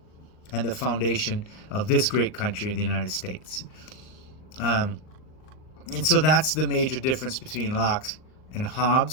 and the foundation of this great country, the United States. And so that's the major difference between Locke and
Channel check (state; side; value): late; right; 38 ms